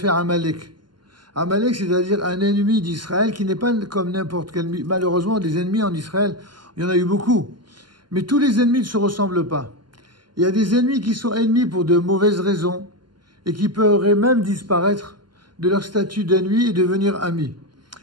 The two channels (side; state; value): left; late; 0.71 ms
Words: Amalek. Amalek, c'est-à-dire un ennemi d'Israël qui n'est pas comme n'importe quel ennemi. Malheureusement, des ennemis en Israël, il y en a eu beaucoup. Mais tous les ennemis ne se ressemblent pas. Il y a des ennemis qui sont ennemis pour de mauvaises raisons et qui pourraient même disparaître de leur statut d'ennemi et devenir amis.